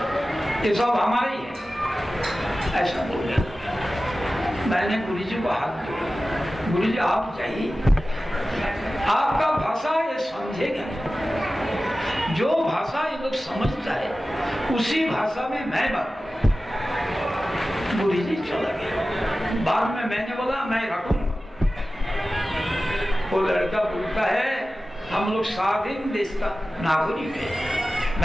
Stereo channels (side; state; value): both; normal; correlation 0.95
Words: ये सब हमारे ही है, ऐसा बोलने लगा। मैंने गुरुजी को हाथ जोड़ा, गुरुजी आप चाहिए, आपका भाषा ये समझेगा, जो भाषा ये लोग समझता है उसी भाषा में मैं बात। गुरुजी चला गया। बाद में मैंने बोला मैं रखूंगा। वो लड़का बोलता है हम लोग स्वाधीन देश का नागरिक है।